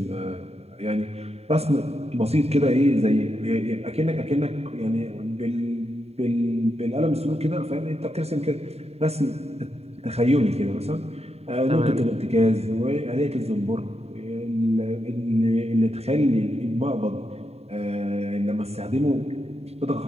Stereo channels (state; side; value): late; left; 0.30 ms